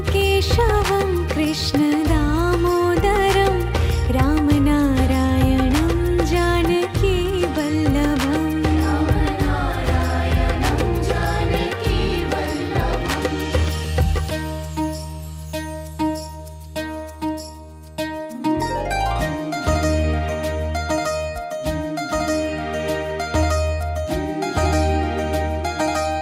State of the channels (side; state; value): both; identical; correlation 1.00